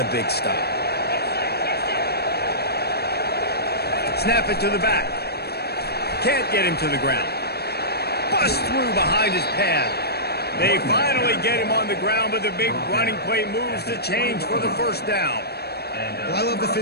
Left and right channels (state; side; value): late; right; 0.47 ms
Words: the big stop. Snap it to the back. Can't get him to the ground. Bust through behind his pad. They finally get him on the ground, but the big running play moves the change for the first down. Well, I love the